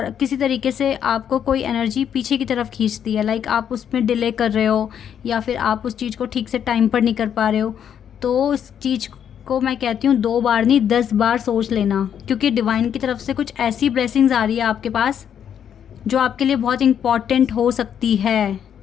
किसी तरीके से आपको कोई एनर्जी पीछे की तरफ खींचती है, लाइक आप उसमें डिले कर रहे हो या फिर आप उस चीज़ को ठीक से टाइम पर नहीं कर पा रहे हो, तो उस चीज़ को मैं कहती हूँ 2 बार नहीं 10 बार सोच लेना, क्योंकि डिवाइन की तरफ से कुछ ऐसी ब्लेसिंग्स आ रही है आपके पास जो आपके लिए बहुत इम्पॉर्टेंट हो सकती है।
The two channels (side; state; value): right; quieter; 8.8 dB